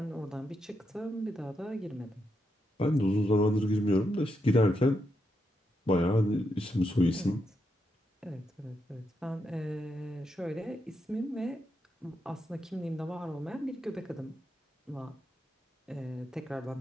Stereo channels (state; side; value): normal; both; correlation 0.83